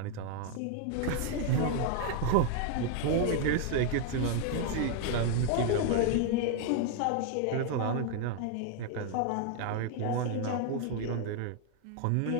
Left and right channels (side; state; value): both; different; correlation 0.00